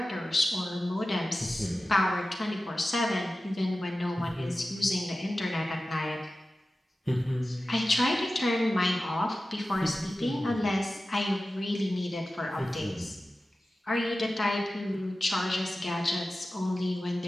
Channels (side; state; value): both; normal; correlation 0.95